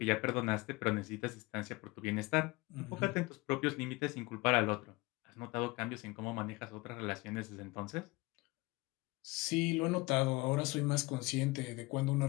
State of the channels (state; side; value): quieter; right; 23.4 dB